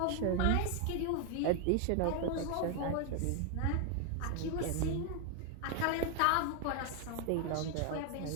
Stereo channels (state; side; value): different; both; correlation 0.01